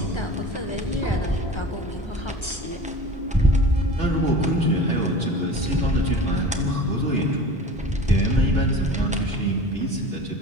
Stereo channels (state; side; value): normal; both; correlation 0.38